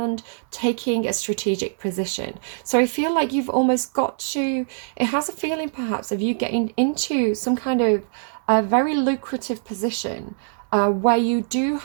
taking a strategic position. So I feel like you've almost got to, it has a feeling perhaps of you getting into some kind of a very lucrative position where you do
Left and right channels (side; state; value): left; silent; 63 dB below the other